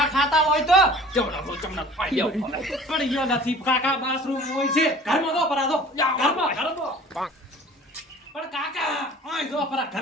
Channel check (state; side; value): normal; both; correlation 0.47